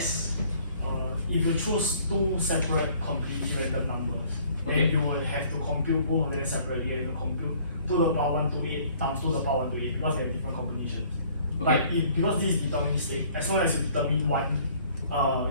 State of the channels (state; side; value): inverted; both; correlation -0.57